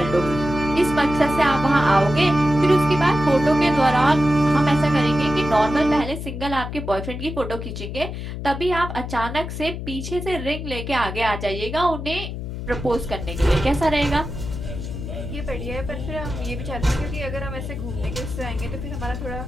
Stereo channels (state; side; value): noise; left; hum, 7 dB below the sound